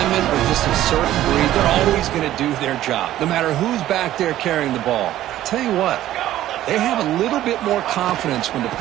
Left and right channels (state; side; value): quieter; left; 13.5 dB